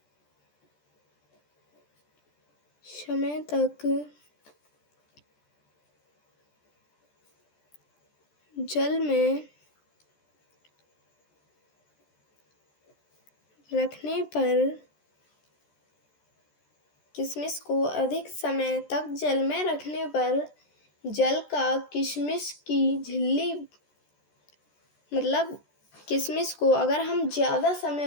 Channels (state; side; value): late; right; 13 ms